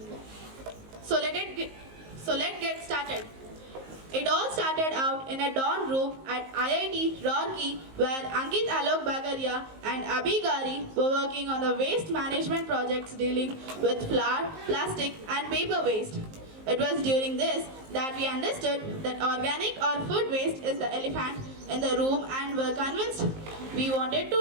So let's get started. It all started out in a dorm room at IIT Roorkee, where Ankit Alok Bagaria and Abhi Gawri were working on the waste management projects dealing with flour, plastic and paper waste. It was during this that we understood that organic or food waste is the elephant in the room and were convinced we wanted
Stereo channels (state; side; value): late; left; 19 ms